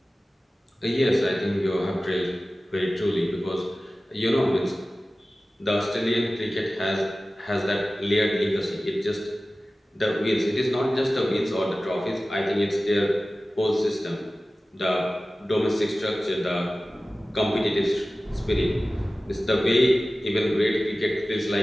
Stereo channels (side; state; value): both; normal; correlation 0.96